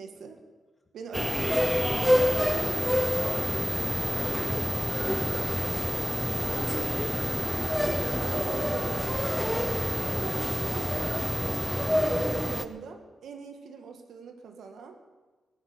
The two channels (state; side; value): normal; both; correlation 0.98